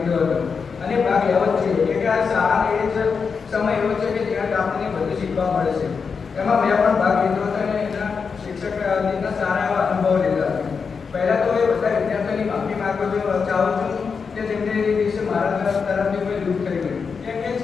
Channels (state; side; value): quieter; right; 5.6 dB